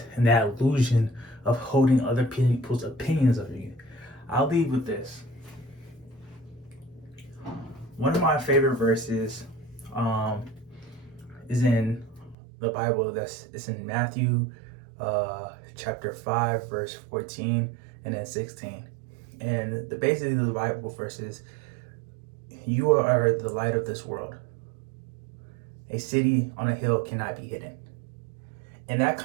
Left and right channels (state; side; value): drops out; left; at 12.4 s